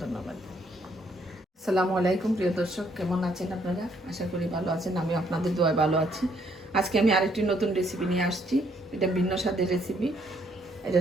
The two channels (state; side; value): normal; both; correlation 0.69